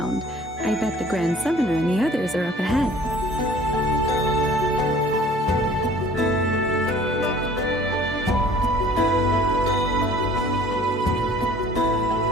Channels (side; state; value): both; normal; correlation 0.52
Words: I bet the Grand Summoner and the others are up ahead.